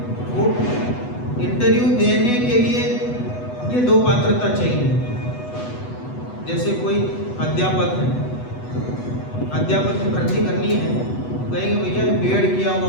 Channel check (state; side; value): late; right; 8.1 ms